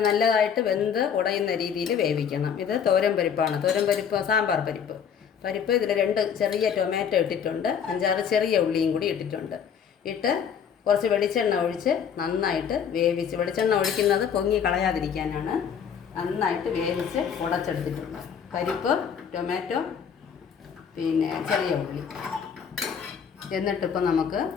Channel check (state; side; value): quieter; right; 7.6 dB